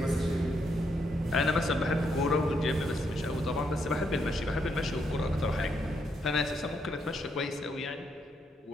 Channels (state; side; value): normal; both; correlation 0.77